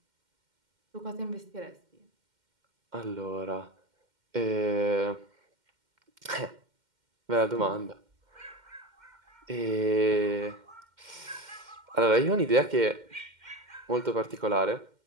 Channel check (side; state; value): left; late; 2.1 ms